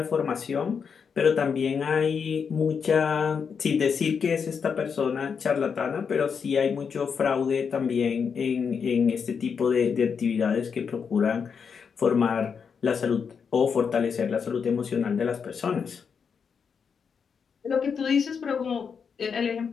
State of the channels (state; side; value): quieter; right; 6.3 dB